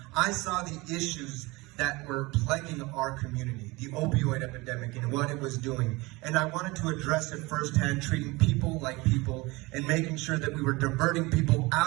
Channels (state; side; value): quieter; left; 23.2 dB